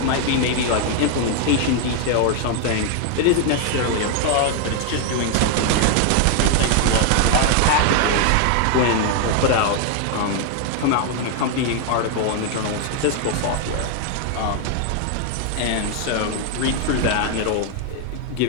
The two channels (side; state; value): both; different; correlation 0.00